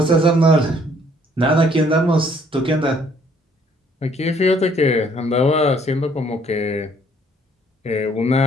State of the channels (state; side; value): normal; both; correlation 0.63